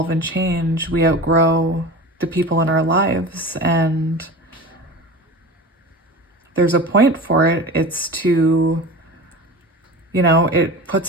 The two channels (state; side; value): normal; both; correlation 0.32